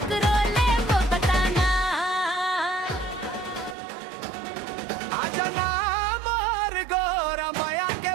ले वो बताना। आजा ना मोर गोरा माया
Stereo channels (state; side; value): drops out; left; at 3.8 s